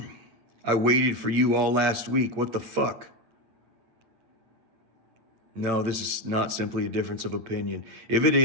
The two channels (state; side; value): late; left; 8.8 ms